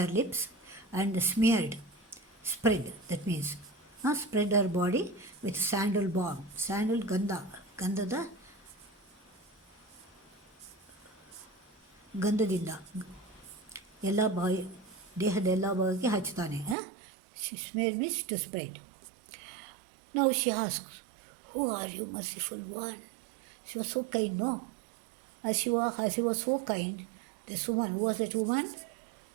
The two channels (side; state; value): left; drops out; at 16.8 s